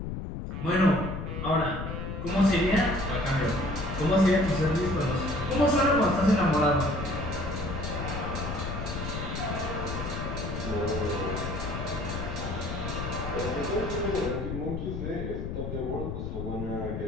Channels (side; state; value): left; noise; rumble, 5 dB below the sound